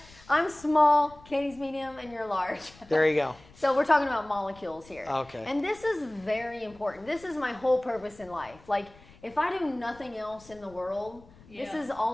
I'm small, Katie's medium, and you're large. There you go. So we're talking about molecules here. Okay. And this is very important. This is my whole purpose in life. Like, if I do nothing else in the world, this Yeah. is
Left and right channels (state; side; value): noise; left; rumble, 24 dB below the sound